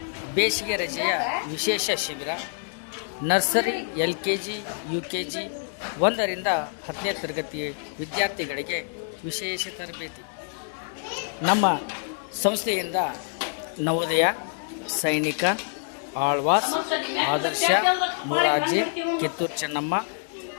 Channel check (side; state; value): right; silent; 61 dB below the other